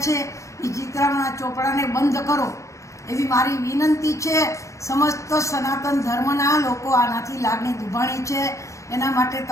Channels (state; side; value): late; right; 0.15 ms